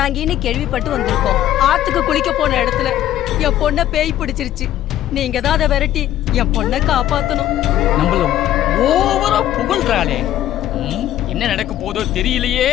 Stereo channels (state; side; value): quieter; right; 12.6 dB